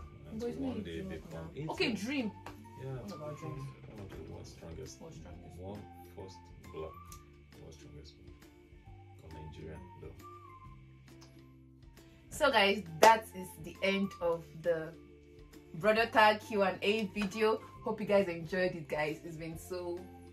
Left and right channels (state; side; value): identical; both; correlation 1.00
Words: and to one day become. Okay, dream. Yeah, what about dreams? One of the world's strongest. What's strongest? One first block. World's strongest. Nigerian though. So guys, that is the end of the brother tag Q&A video. Hope you guys enjoyed it, guys. It's been so